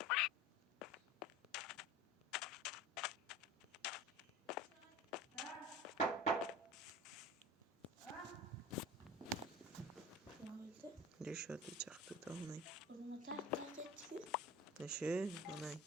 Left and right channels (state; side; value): normal; both; correlation 0.38